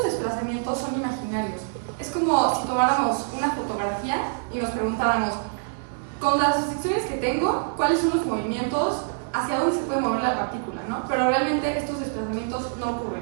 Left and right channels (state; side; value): silent; left; digital silence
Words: desplazamientos son imaginarios. Es como si tomáramos una fotografía y nos preguntáramos, con las restricciones que tengo, ¿cuáles son los movimientos, hacia dónde se puede mover la partícula, ¿no? Pero realmente estos desplazamientos no